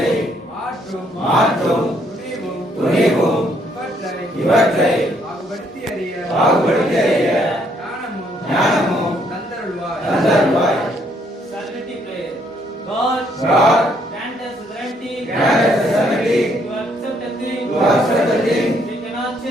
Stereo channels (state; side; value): normal; both; correlation 0.69